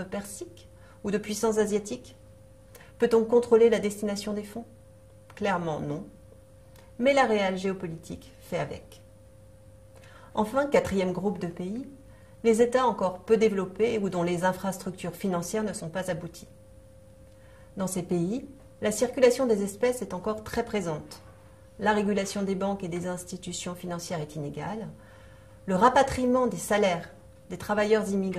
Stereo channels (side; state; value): both; identical; correlation 1.00